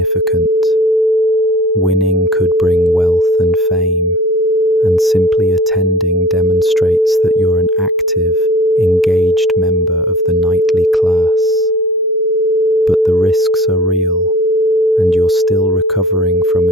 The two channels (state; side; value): normal; both; correlation 0.44